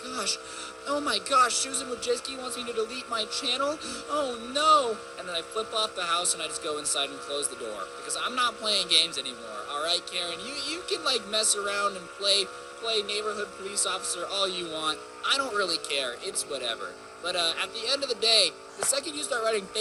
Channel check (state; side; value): identical; both; correlation 1.00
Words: Oh my gosh, Susan Wojcicki wants me to delete my channel? Oh no! And then I flip off the house and I just go inside and close the door. Because I'm not playing games anymore, alright, Karen? You can like mess around and play neighborhood police officer all you want. I don't really care. It's whatever. But at the end of the day, the second you start writing